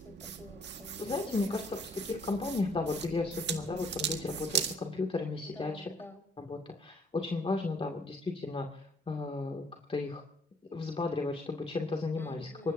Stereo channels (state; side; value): normal; both; correlation 0.63